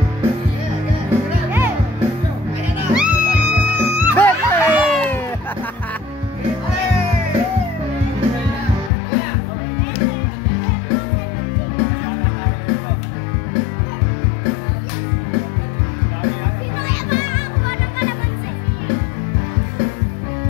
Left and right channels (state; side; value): drops out; right; at 8.9 s